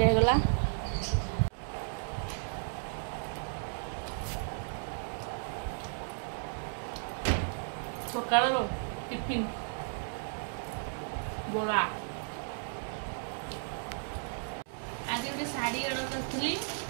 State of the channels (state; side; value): silent; left; digital silence